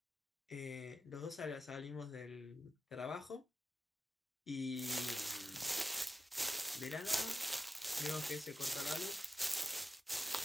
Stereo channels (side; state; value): both; normal; correlation 0.88